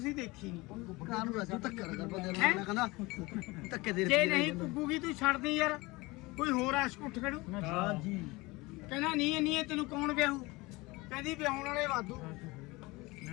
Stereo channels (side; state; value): right; quieter; 22.9 dB